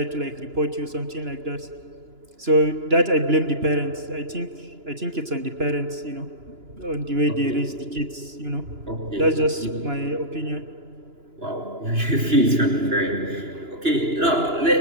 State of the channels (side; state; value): left; late; 2.9 ms